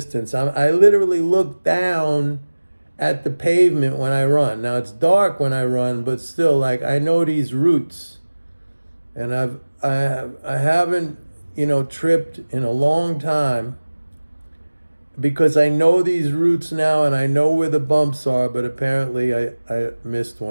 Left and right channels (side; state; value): both; inverted; correlation -1.00